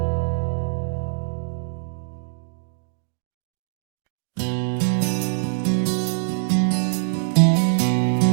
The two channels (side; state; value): left; silent; digital silence